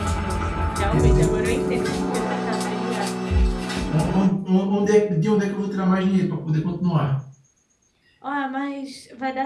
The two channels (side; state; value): both; identical; correlation 1.00